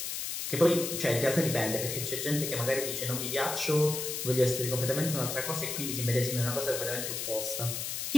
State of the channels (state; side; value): noise; left; hiss, 3 dB below the sound